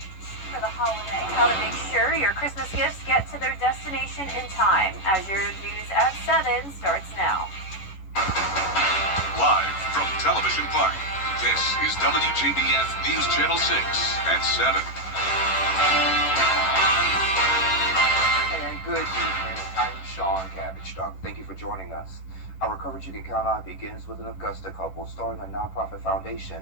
for the holiday. How to make sure your Christmas gifts get to their destination in time. As your news at 7 starts now. Live from Television Park, this is WJBF News Channel 6 at 7. And good evening. I'm Sean Cabbage Dog. Thank you for joining us. Our coverage you can count on begins with an Augusta couple starting a nonprofit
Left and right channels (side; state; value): right; late; 11 ms